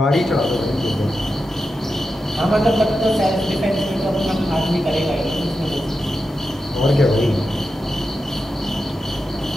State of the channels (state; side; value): normal; both; correlation 0.89